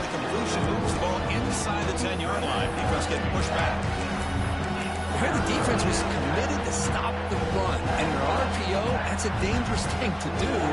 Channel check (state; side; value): identical; both; correlation 1.00